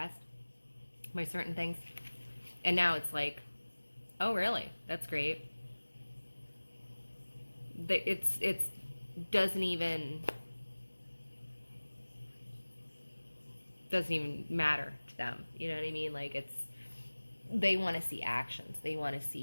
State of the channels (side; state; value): both; inverted; correlation -1.00